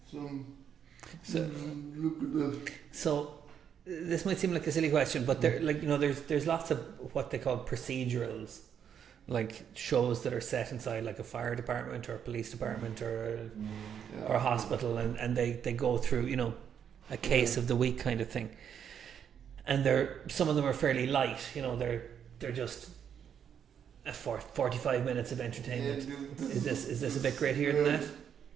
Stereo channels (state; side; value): quieter; left; 8.3 dB